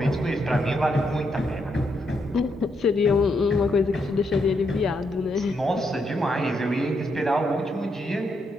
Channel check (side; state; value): both; normal; correlation 0.79